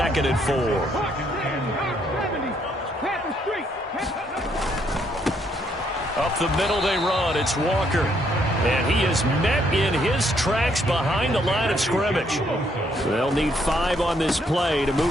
and 4. Up the middle they run. It's Walker. And he is met in his tracks behind the line of scrimmage. They'll need 5 on this play to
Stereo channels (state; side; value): normal; both; correlation 0.71